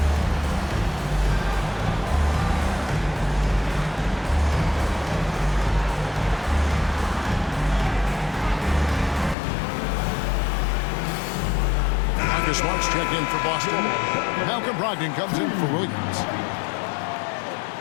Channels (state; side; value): drops out; right; at 9.3 s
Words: Smart's checked in for Boston. Malcolm Brogdon comes in for Williams.